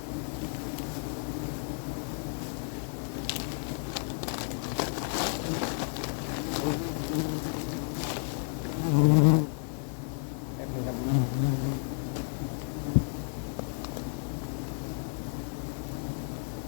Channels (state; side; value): silent; right; 57 dB below the other